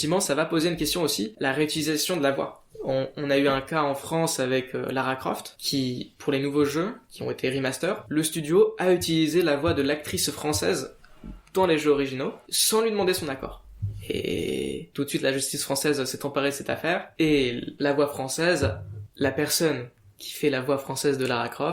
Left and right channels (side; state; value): both; identical; correlation 1.00